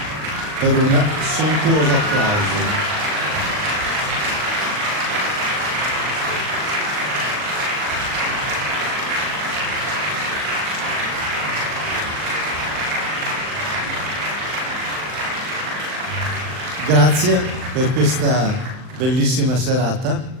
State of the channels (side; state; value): left; late; 39 ms